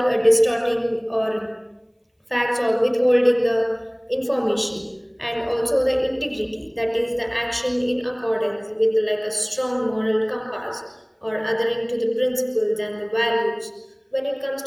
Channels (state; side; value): identical; both; correlation 1.00